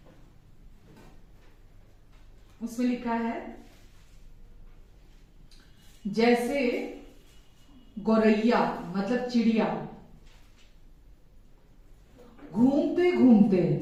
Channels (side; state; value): both; identical; correlation 1.00